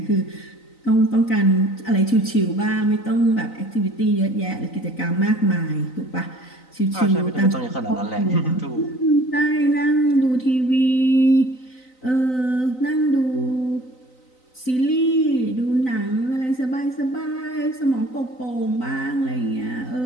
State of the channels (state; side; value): late; right; 3.9 ms